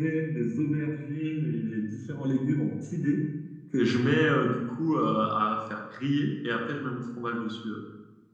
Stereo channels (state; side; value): identical; both; correlation 1.00